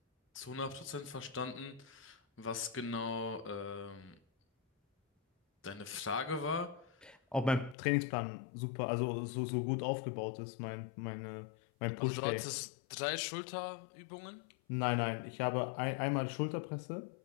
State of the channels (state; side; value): drops out; right; at 7.8 s